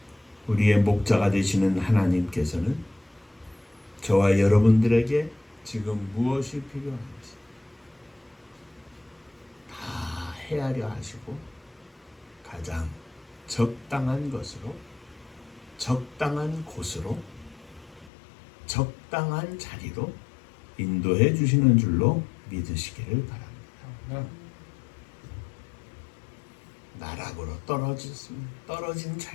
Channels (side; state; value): right; drops out; at 18.1 s